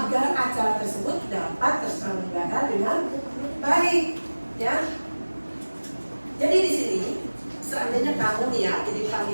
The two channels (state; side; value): inverted; both; correlation -1.00